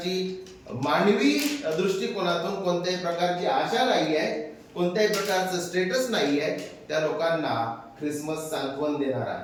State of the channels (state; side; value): identical; both; correlation 1.00